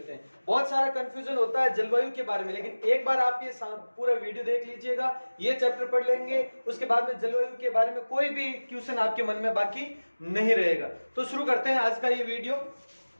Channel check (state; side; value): inverted; both; correlation -1.00